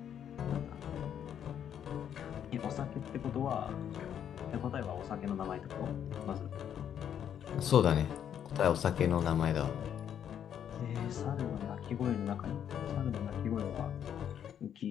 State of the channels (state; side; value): quieter; right; 9.2 dB